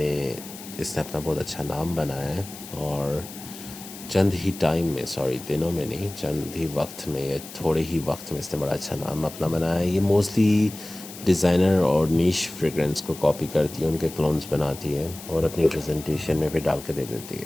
اس نے اپنا بہت اچھا نام بنایا ہے، اور چند ہی ٹائم میں، سوری دنوں میں نہیں، چند ہی وقت میں یا تھوڑے ہی وقت میں اس نے بڑا اچھا نام اپنا بنایا ہے. یہ موسٹلی ڈیزائنر اور نیش فریگرنس کو کاپی کرتی ہے، ان کے کلونز بناتی ہے اور اپنی پریزنٹیشن میں بھی ڈال کے دے دیتی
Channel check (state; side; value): noise; left; hiss, 14 dB below the sound